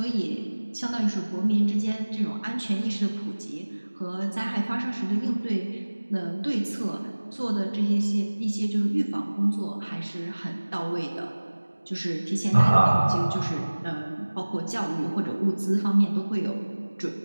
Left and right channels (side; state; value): both; inverted; correlation -1.00